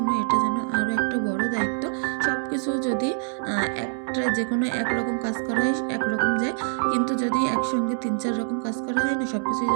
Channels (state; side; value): silent; left; 62 dB below the other